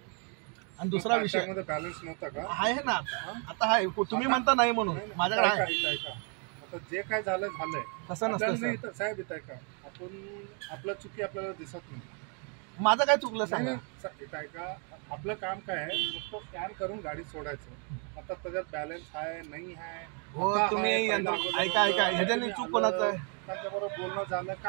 आणि दुसरा विषय मध्ये बॅलन्स नव्हता का? आहे ना आता आहे. तुम्ही म्हणता नाही म्हणून, माझ्याकडे आहे. ऐका, आता जे काय झालंय तसं नसतं आपल्याला सर. नाही साहेब, येत आहे का आपण आपलं चुकी आपल्याला दिसत नाही. माझं काय चुकलं सांगा? काय का आपलं काम काय आहे, नुसतं स्कॅन करून गाडी सोडायचं. आता त्याच्यात बॅलन्स आहे नाही आहे. हो तुम्ही ऐका ह्याच्याने चूक कोणाचं आहे? त्यांच्याबरोबर बोलणं झालं,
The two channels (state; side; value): quieter; left; 38.4 dB